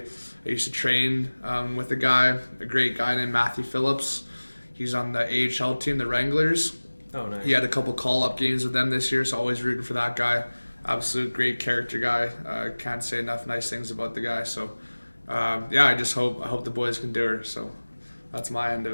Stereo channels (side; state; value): both; inverted; correlation -1.00